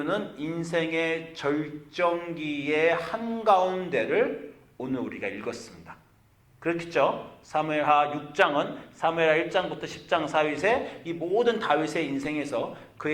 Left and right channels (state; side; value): identical; both; correlation 1.00